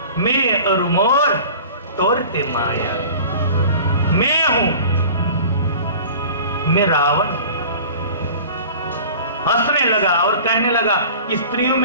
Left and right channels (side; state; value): both; inverted; correlation -0.42